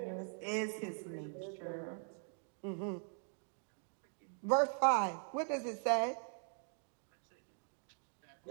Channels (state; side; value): silent; left; 50 dB below the other